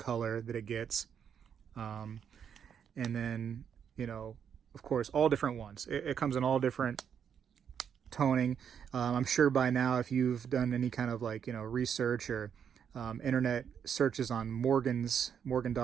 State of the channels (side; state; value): left; quieter; 7.9 dB